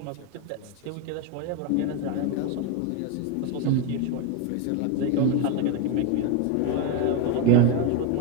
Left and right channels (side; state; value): both; different; correlation 0.02